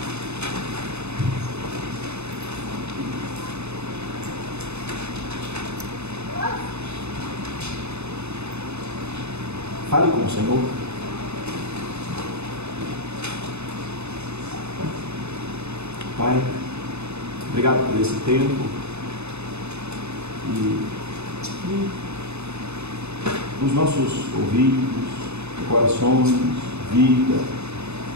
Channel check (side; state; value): left; late; 0.81 ms